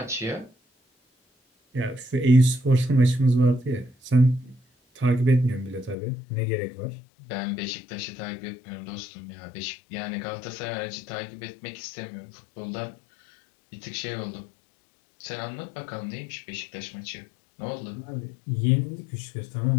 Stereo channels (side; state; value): right; drops out; at 6.0 s